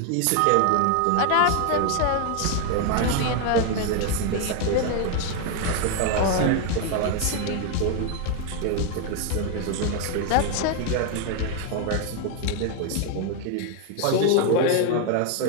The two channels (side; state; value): both; different; correlation 0.01